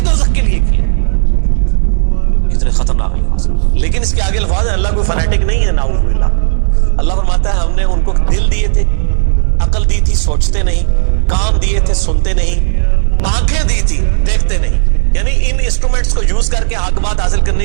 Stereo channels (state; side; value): silent; left; digital silence